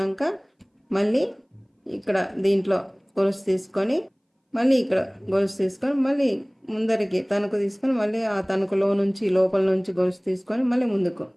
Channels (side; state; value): both; identical; correlation 1.00